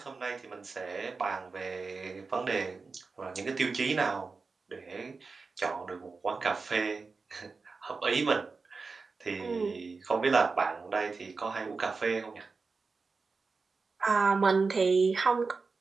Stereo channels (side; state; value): left; quieter; 4.4 dB